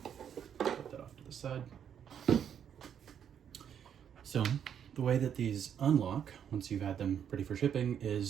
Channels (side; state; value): left; quieter; 8.6 dB